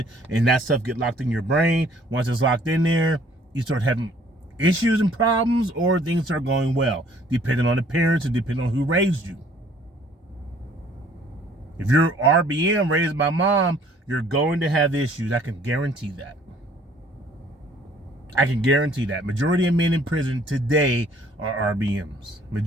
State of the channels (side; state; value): both; normal; correlation 0.58